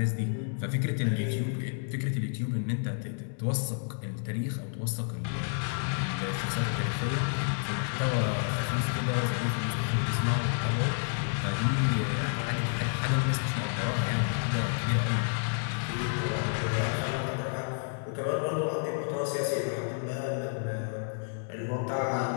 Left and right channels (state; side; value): silent; right; digital silence